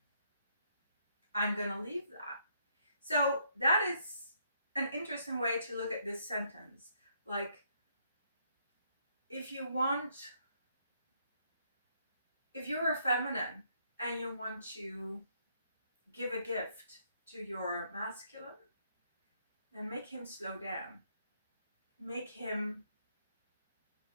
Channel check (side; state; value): both; inverted; correlation -0.71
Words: I'm gonna leave that. So that is an interesting way to look at this sentence. Like, if you want, if you're a feminine and you want to give a gift to your masculine, then make him slow down. Make him,